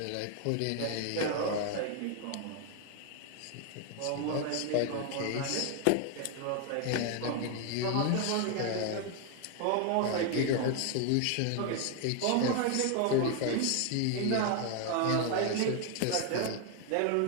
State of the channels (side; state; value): both; different; correlation 0.01